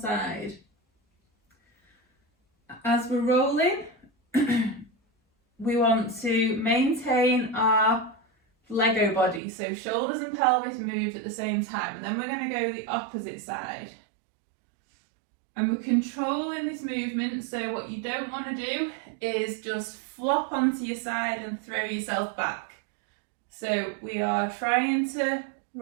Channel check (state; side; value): drops out; left; at 9.4 s